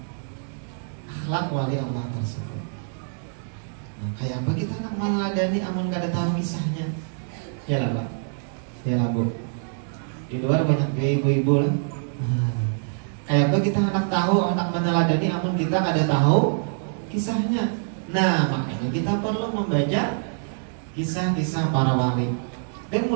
akhlak wali Allah tersebut. Nah, kayak apa kita nak meneladani amun gak ada tahu kisahnya? Ya lah Pak, ya lah Bu. Di luar banyak ibu-ibu lah. Kayak apa kita anak tahu, anak meneladani amun kita gak ada tahu kisahnya. Nah, makanya kita perlu membaca kisah-kisah para wali. Dan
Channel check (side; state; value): left; silent; digital silence